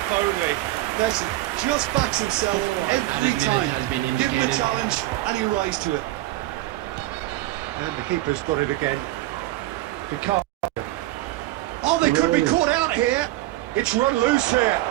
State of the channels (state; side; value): quieter; left; 16.9 dB